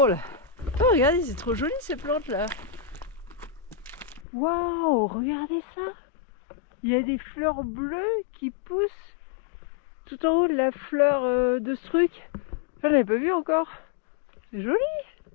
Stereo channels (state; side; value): drops out; right; at 4.2 s